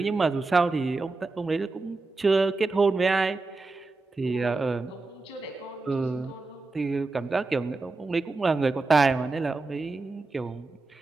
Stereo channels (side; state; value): left; quieter; 3.6 dB